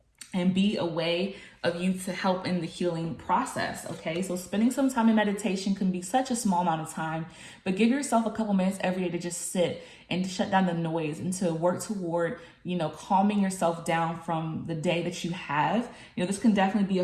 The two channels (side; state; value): both; identical; correlation 1.00